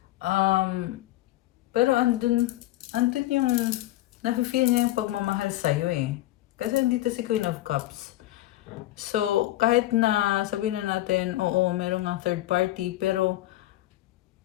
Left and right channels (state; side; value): quieter; right; 15.8 dB